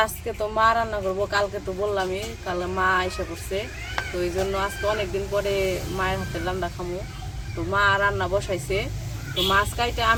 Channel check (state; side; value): identical; both; correlation 1.00